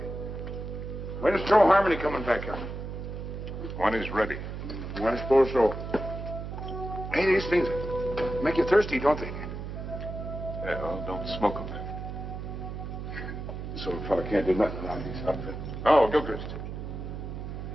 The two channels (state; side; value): noise; right; hum, 7 dB below the sound